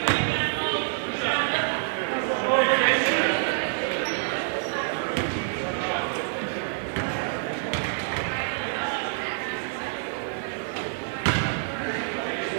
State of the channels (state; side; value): silent; left; digital silence